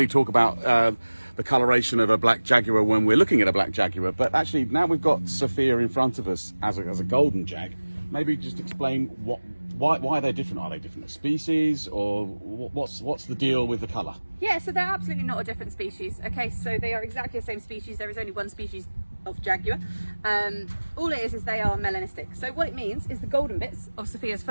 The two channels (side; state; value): both; inverted; correlation -1.00